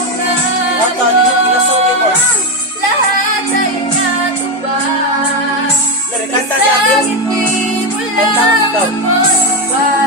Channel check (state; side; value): normal; both; correlation 0.10